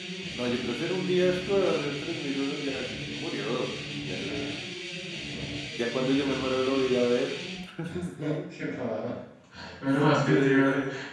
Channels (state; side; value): identical; both; correlation 1.00